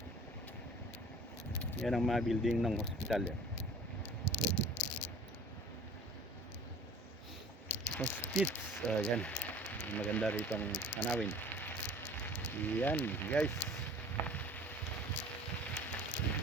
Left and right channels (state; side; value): normal; both; correlation 0.46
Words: Yan ang mga building ng hospital. Hospits. Yan. Maganda rito ang tanawin. Yan, guys.